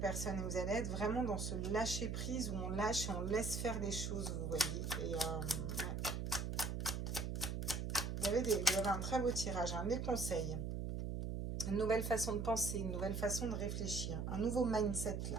et vous allez être vraiment dans ce lâcher prise où on lâche et on laisse faire des choses, vous voyez. Et ouais. Vous avez un très beau tirage, des conseils, une nouvelle façon de penser, une nouvelle façon de réfléchir, un nouveau mindset là.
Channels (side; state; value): right; noise; hum, 2 dB below the sound